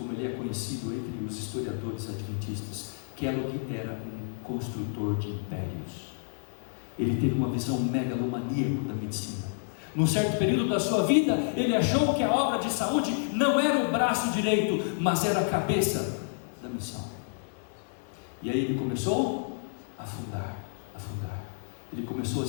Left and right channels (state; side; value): silent; right; digital silence